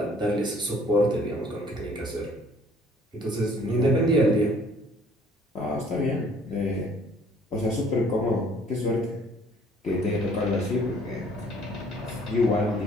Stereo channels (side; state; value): both; normal; correlation 0.57